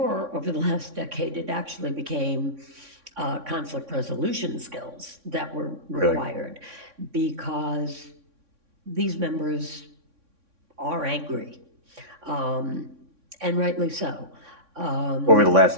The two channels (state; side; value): late; left; 3.6 ms